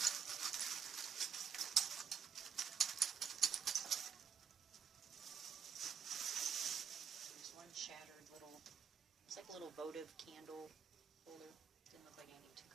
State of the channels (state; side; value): quieter; left; 6.8 dB